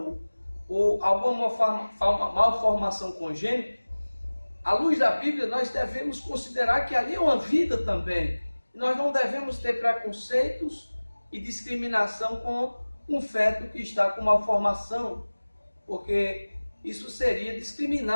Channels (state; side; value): inverted; both; correlation -1.00